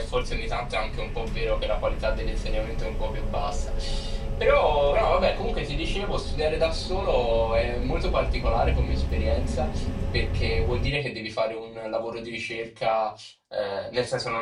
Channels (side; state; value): both; identical; correlation 1.00